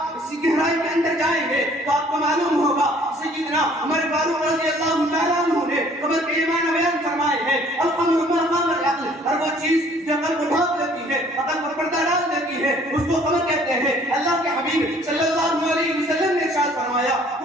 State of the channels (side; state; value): both; normal; correlation 0.57